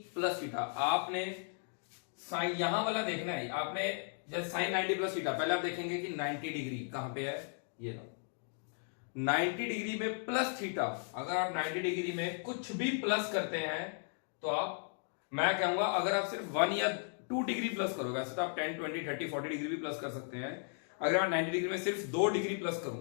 प्लस थीटा। आपने साइन यहां वाला देखना है, आपने जैसे साइन 90 प्लस थीटा पहले आप देखेंगे कि 90 डिग्री कहां पे है, ये लो 90 डिग्री में प्लस थीटा। अगर आप 90 डिग्री में कुछ भी प्लस करते हैं तो आप, मैं कहूंगा अगर आप सिर्फ 1 या 2 डिग्री प्लस करोगे, वैसे तो आप 10 20 30 40 डिग्री भी प्लस कर सकते हैं। अगर मैं 90 डिग्री में सिर्फ 2 डिग्री प्लस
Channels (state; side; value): silent; right; 54 dB below the other